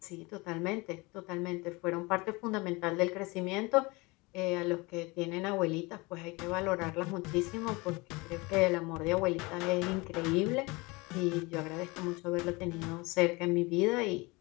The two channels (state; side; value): quieter; right; 24.9 dB